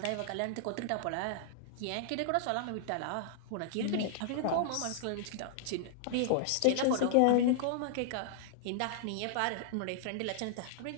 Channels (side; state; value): both; different; correlation -0.01